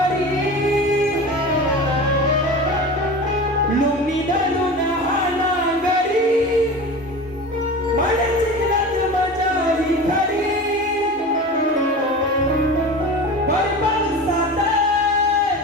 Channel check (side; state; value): both; normal; correlation 0.32